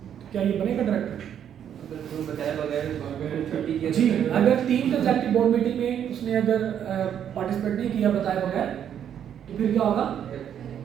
क्या ये बनेगा डायरेक्टर? जी, अगर 3 कंसेक्टिव बोर्ड मीटिंग में उसने अगर पार्टिसिपेट नहीं किया बताए बगैर तो फिर क्या होगा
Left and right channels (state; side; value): quieter; left; 9.3 dB